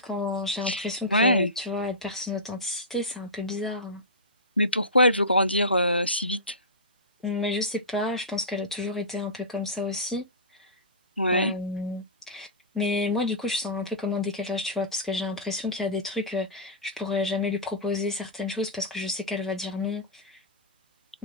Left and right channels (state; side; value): normal; both; correlation -0.18